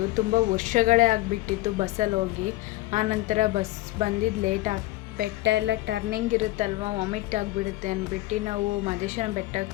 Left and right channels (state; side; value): quieter; right; 18.4 dB